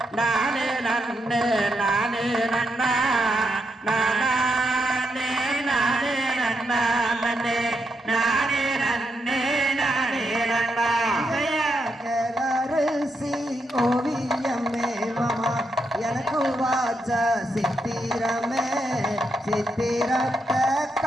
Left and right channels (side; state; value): both; normal; correlation 0.81